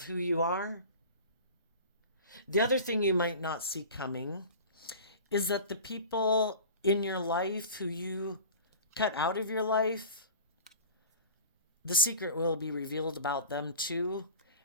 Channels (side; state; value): both; inverted; correlation -0.38